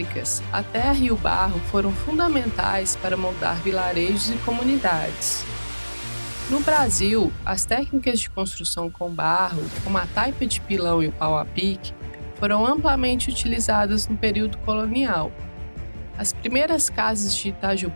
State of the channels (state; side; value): inverted; both; correlation -1.00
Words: a terra e o barro foram fundamentais para moldar vilarejos e comunidades. No Brasil, as técnicas de construção com barro, como a taipa de pilão e o pau a pique, foram amplamente utilizadas no período colonial. As primeiras casas de